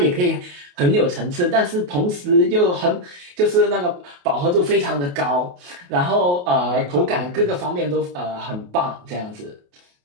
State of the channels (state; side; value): late; left; 28 ms